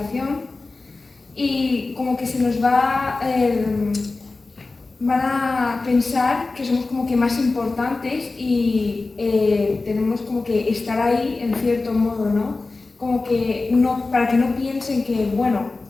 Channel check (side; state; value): right; quieter; 3.5 dB